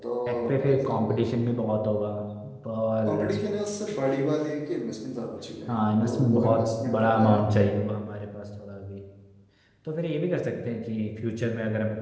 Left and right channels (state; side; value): identical; both; correlation 1.00